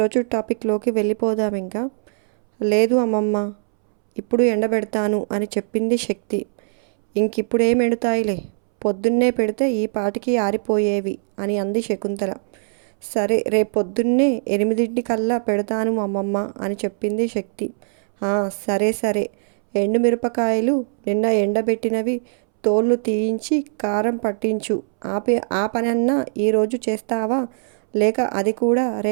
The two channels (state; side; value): silent; left; 65 dB below the other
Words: టాపిక్లోకి వెళ్ళిపోదాం. ఇంకా లేదు అమ్మమ్మ, ఇప్పుడు ఎండబెడతాను అని చెప్పింది శక్తి. ఇంకిప్పుడేం ఎండుతాయిలే, పొద్దున్నే పెడితే ఈ పాటికి ఆరిపోయేవి అని అంది శకుంతల. సరే, రేపొద్దున్నే 8 పెడతాను అమ్మమ్మ అని చెప్పింది శక్తి. సరే సరే, ఎండుమిరపకాయలు నిన్న ఎండబెట్టినవి తోళ్ళు తీయించి కారం పట్టించు. ఆ పనన్నా ఈరోజు చేస్తావా, లేక అది కూడా